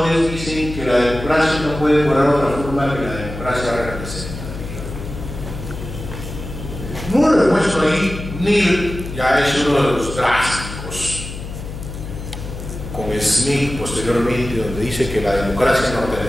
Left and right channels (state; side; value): noise; left; hum, 9 dB below the sound